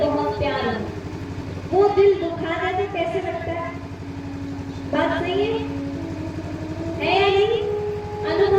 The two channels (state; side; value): identical; both; correlation 1.00